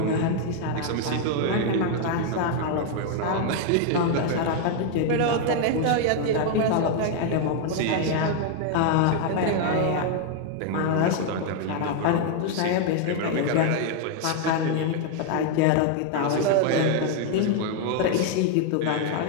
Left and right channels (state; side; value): different; both; correlation 0.00